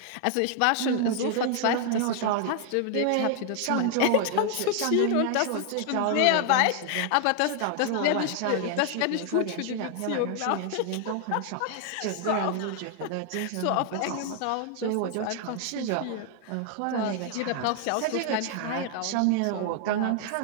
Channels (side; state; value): both; different; correlation 0.00